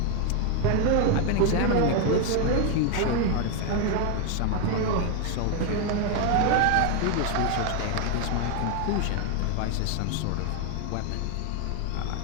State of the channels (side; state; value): both; different; correlation 0.01